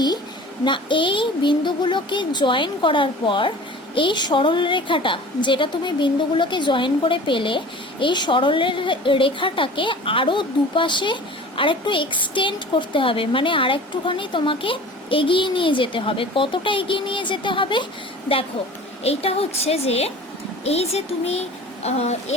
না, এই বিন্দুগুলোকে জয়েন করার পর এই সরল রেখাটা যেটা তুমি বিন্দুগুলোকে জয়েন করে পেলে, এই সরল রেখাটাকে আরও দুপাশে আরেকটু এক্সটেন্ড করতে হবে, মানে আরেকটুখানি তোমাকে এগিয়ে নিয়ে যেতে হবে। কতটা এগিয়ে নিয়ে যেতে হবে দেখো, এইটা হচ্ছে যে এই যে তুমি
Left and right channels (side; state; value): both; normal; correlation 0.41